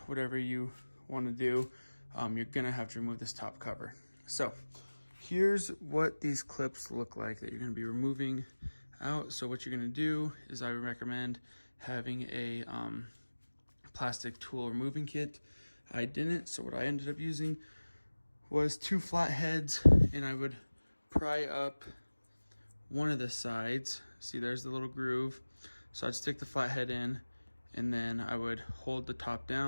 whatever you want to do, you're going to have to remove this top cover. So here's what these clips look like that you're going to be removing out. So what you're going to do is I would recommend having a plastic tool removing kit. I didn't, so what I ended up using was 2 flat heads, and I would pry up one of the sides. See, there's the little groove. So I'd stick the flat head in, and then I would hold the top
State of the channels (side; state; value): both; inverted; correlation -1.00